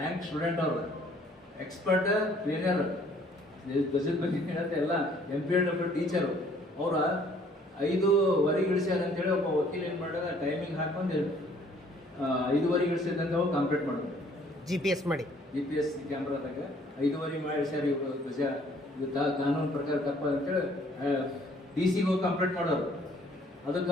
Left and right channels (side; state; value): both; normal; correlation 0.60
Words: ಸ್ಟೂಡೆಂಟ್ ಅವರು, ಎಕ್ಸ್ಪರ್ಟ್ ಟ್ರೈನರ್, ಧ್ವಜದ ಬಗ್ಗೆ ಹೇಳುತ್ತೆ ಎಲ್ಲ. MPEd ಟೀಚರು ಅವರ 5:15 ಇಳಿಸ್ಯಾರ ಅಂತೇಳಿ ಒಬ್ಬ ವಕೀಲ ಏನು ಮಾಡೋದು, ಟೈಮಿಂಗ್ ಹಾಕೊಂಡು 5:15 ಇಳಿಸಿದಂತ ಅವ್ರು ಕಂಪ್ಲೀಟ್ ಮಾಡೋದು. GPS ಕ್ಯಾಮ್ರಾದಾಗ 5:15 ಮಾಡಿ ಇಳಿಸ್ಯಾರ ಇವರು ಧ್ವಜ. ಇದು ಕಾನೂನು ಪ್ರಕಾರ ತಪ್ಪ ಅಂತೇಳಿ DC ಹೋಗಿ ಕಂಪ್ಲೀಟ್ ಮಾಡೋರು. ಅದಕ್ಕೆ